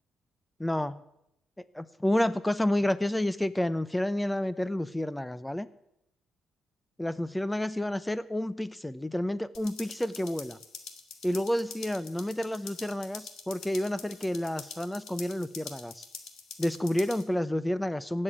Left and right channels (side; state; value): both; normal; correlation 0.98